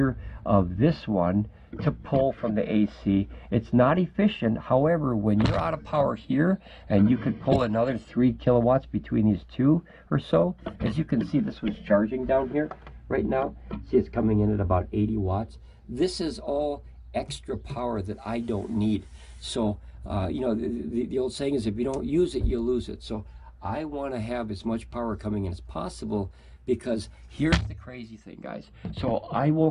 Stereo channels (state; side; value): identical; both; correlation 1.00